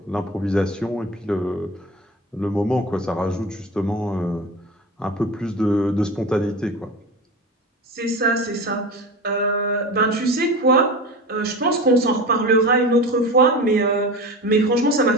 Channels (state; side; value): normal; both; correlation 0.30